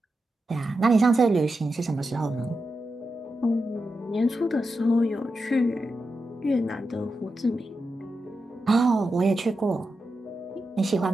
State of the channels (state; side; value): normal; both; correlation 0.89